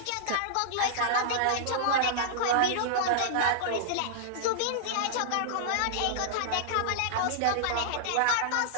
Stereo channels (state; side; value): different; both; correlation -0.01